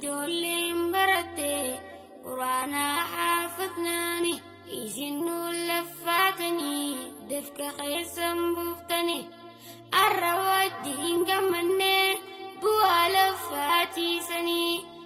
baratte qur'aanaa haafadnaani isin nuun laffaatanii dafqa keessan buuftanii. Har'a wajjin gammannee bu'aa laffaatiisanii.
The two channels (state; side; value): identical; both; correlation 1.00